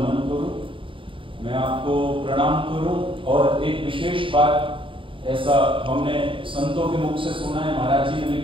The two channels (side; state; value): left; late; 0.25 ms